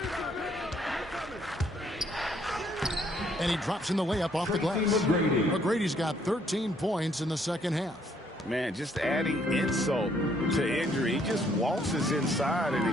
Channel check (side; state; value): both; normal; correlation 0.67